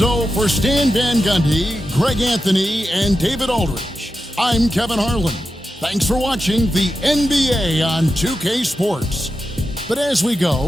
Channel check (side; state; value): both; normal; correlation 0.90